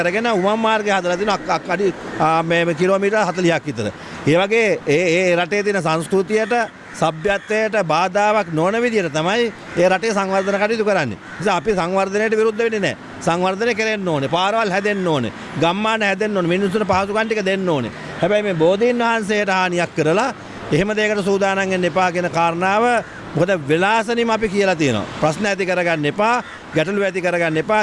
උමම් මාර්ගය හදලා තිනවා අඩි මේ කිලෝමීටර් 40ක් විතර. ඒ වගේ ඒ රටේ තියෙන සංස්කෘතියට, සભ્યත්වයට බාධාවක් නොවන විදිහට තමයි ඒ රටේ සංවර්ධන කටයුතු කරන්නේ. නිසා අපි සංවර්ධනයට විරුද්ධ වෙන්නේ නැහැ. සංවර්ධනය කරන්න ඕනේ. පාරවල් හැදෙන්න ඕනේ. ගම්මාන හැදෙන්න ඕනේ. මිනිස්සුන්ට පහසුකම් ටික දෙන්න ඕනේ. හැබැයි මේ බෝධීන් වහන්සේට හානියක් කරලා එහෙම දෙයකට සූදානම් වෙන්න එපා කියන කාරණාව මොකද වෙලාසනින්ම අපි කියලා තියෙනවා. ප්‍රශ්න ඇති කරගන්න එපා, ගැටලු ඇති කරගන්න එපා.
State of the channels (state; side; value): identical; both; correlation 1.00